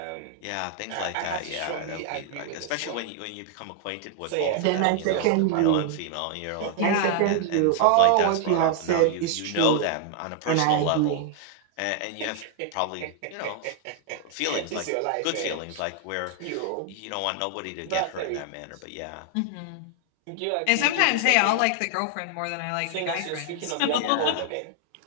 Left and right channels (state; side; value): different; both; correlation 0.00